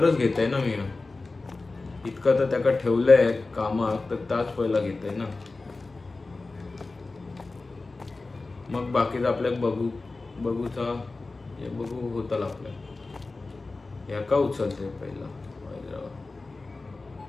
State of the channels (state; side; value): quieter; right; 3.5 dB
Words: घेतय ना मी. इतकं तर त्याका ठेवलंय कामात तर त्याच पहिला घेतय ना. मग बाकीचं आपल्या बघूचा बघू होता आपल्या. ह्याका उचलते पहिला